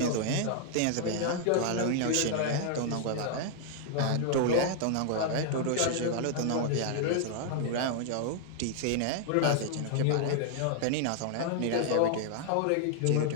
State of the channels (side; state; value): both; different; correlation -0.01